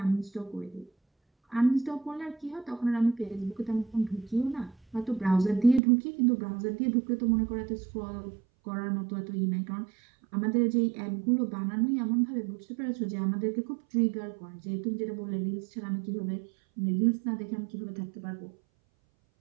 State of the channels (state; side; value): drops out; left; at 5.8 s